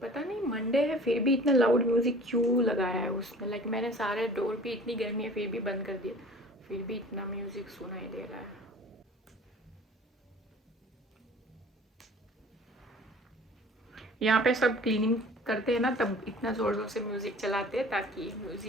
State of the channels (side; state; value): both; normal; correlation 0.46